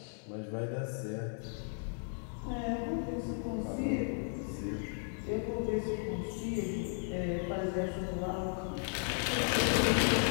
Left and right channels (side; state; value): right; silent; 54 dB below the other